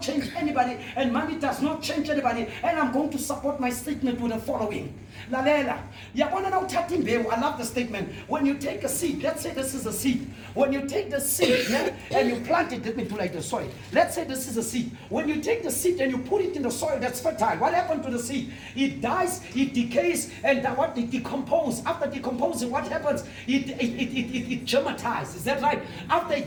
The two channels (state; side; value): identical; both; correlation 1.00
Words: change anybody, and money does not change anybody. And I'm going to support my statement with the following. Lalela, I love the statement. When you take a seed, let's say this is a seed. When you take the seed, yeah, and you plant it, let me do like the soil. Let's say this is a seed. When you take the seed and you put it in the soil that's fertile, what happened to the seed? It dies, it decays, and what it decomposes. After decomposing, what happens? It germatizes. Is that right? After